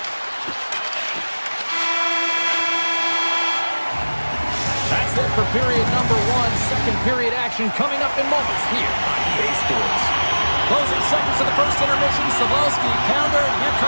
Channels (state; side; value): inverted; both; correlation -1.00